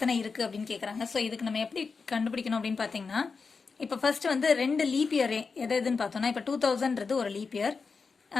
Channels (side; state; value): right; quieter; 4.8 dB